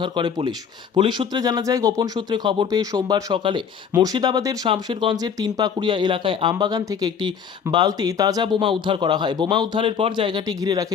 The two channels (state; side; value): quieter; right; 7.0 dB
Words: করে পুলিশ। পুলিশ সূত্রে জানা যায়, গোপন সূত্রে খবর পেয়ে সোমবার সকালে মুর্শিদাবাদের শামশেরগঞ্জের তিনপাকুড়িয়া এলাকায় আমবাগান থেকে একটি বালতি তাজা বোমা উদ্ধার করা হয়। বোমা উদ্ধারের পর জায়গাটি ঘিরে রাখে